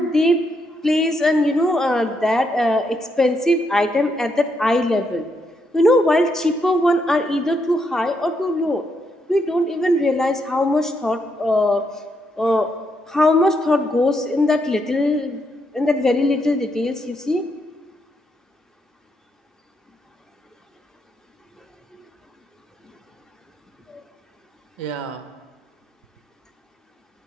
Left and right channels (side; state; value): both; normal; correlation 0.78